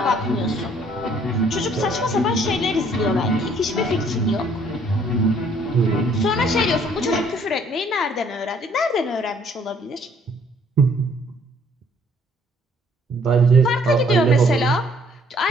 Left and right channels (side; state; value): both; normal; correlation 0.62